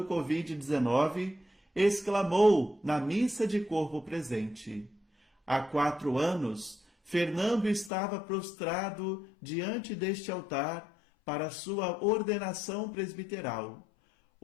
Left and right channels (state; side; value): drops out; right; at 7.9 s